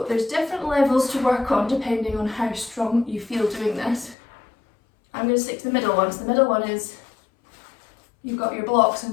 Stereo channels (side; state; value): right; drops out; at 4.2 s